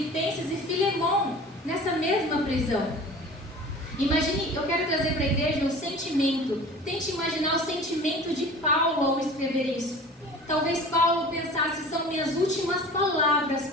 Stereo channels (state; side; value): normal; both; correlation 0.41